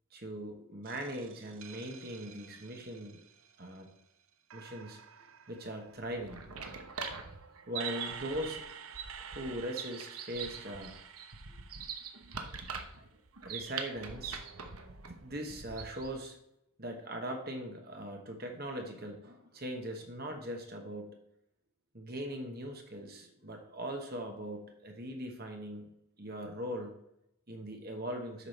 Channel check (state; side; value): normal; both; correlation 0.21